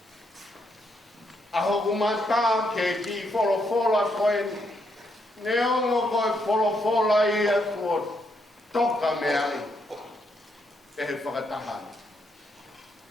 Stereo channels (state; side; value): normal; both; correlation 0.77